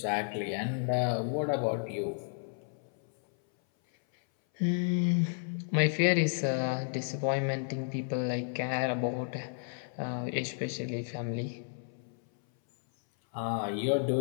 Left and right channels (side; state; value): right; silent; 56 dB below the other